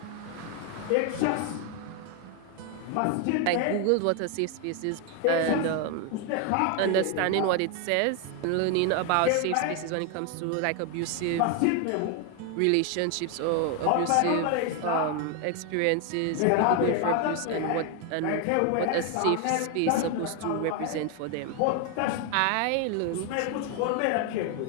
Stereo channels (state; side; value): different; both; correlation 0.01